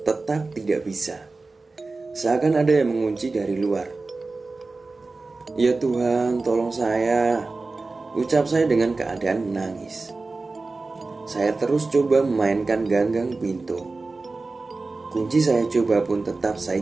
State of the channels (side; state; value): left; quieter; 3.6 dB